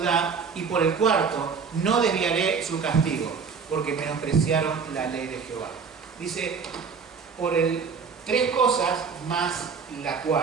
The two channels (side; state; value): left; quieter; 5.7 dB